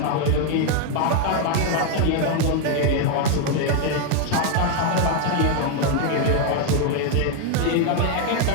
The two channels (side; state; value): both; different; correlation 0.01